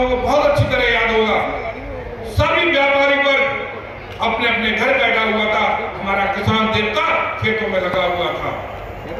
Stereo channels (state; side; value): identical; both; correlation 1.00